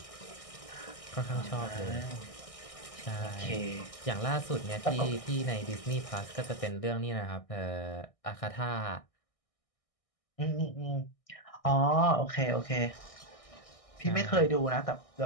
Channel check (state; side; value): late; right; 1.6 ms